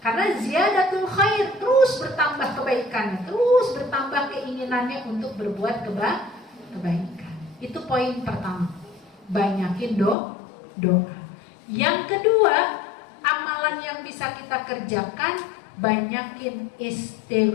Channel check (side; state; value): right; drops out; at 10.2 s